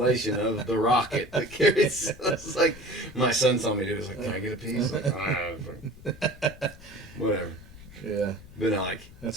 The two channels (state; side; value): noise; left; rumble, 19 dB below the sound